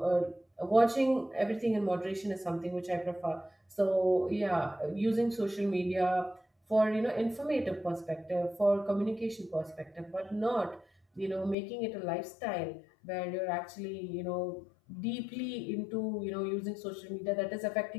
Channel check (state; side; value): drops out; right; at 11.6 s